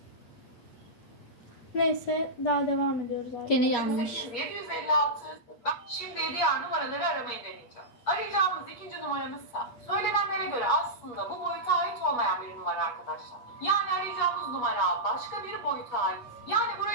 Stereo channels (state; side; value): late; right; 8.5 ms